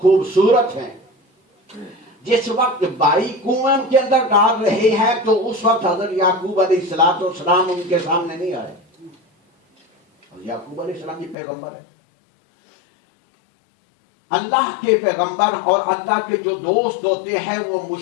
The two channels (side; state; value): right; drops out; at 11.4 s